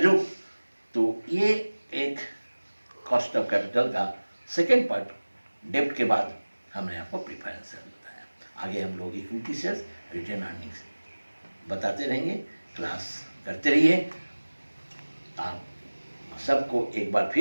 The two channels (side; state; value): both; inverted; correlation -1.00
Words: तो ये एक कॉस्ट ऑफ कैपिटल का सेकेंड पार्ट डेब्ट के बाद हमने आपको प्रेफरेंस शेयर बताया। आगे हम लोग इक्विटी शेयर्स रिटेन अर्निंग्स बताते रहेंगे, क्लास करते रहिए। आप सबको एक बार